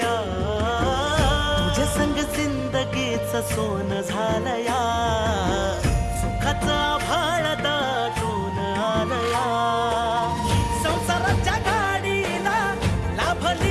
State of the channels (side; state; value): both; identical; correlation 1.00